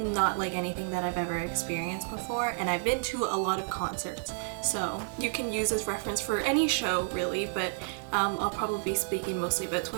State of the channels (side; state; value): left; silent; 57 dB below the other